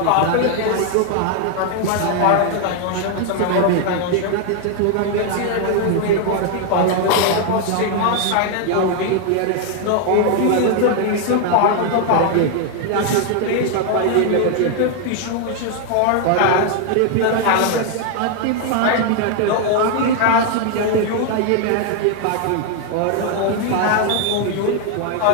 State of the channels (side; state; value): both; different; correlation 0.00